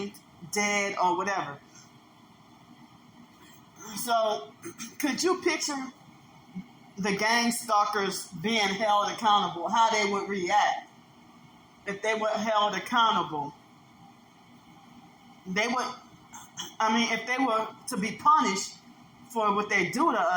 dead, or whatever. So, could you picture the gang stalkers being held accountable, how they would react if they were held accountable? If they were to be punished for what they do to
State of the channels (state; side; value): identical; both; correlation 1.00